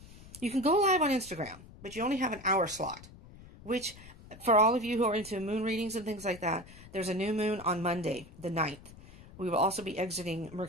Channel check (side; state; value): left; noise; rumble, 19 dB below the sound